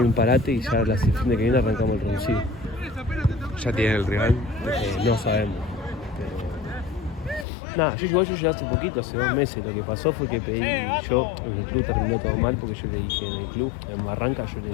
un parate y ya el fin de que viene arrancamos el reducido. ¿Ya tienen el rival? No sabemos. Pero... Nada, yo llegué hace poquito, hace 2 meses. Lo que pasó fue que pedí, yo en el club terminó todo mal porque yo le dije en el club, en Barranca yo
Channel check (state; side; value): drops out; right; at 7.5 s